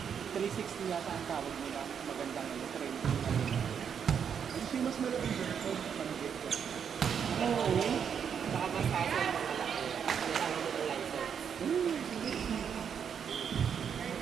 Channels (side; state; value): left; quieter; 7.5 dB